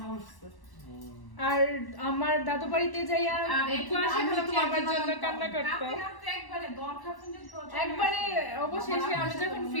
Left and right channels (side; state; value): right; late; 1.1 ms